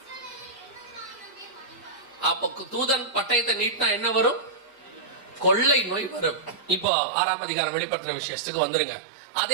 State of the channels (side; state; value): left; drops out; at 6.9 s